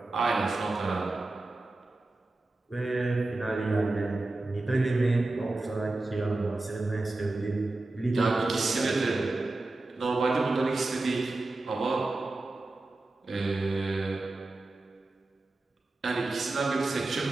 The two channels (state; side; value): quieter; left; 3.1 dB